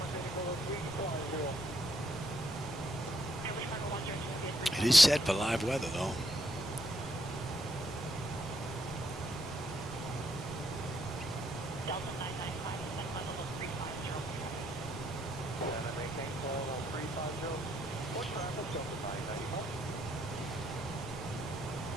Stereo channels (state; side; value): normal; both; correlation 0.74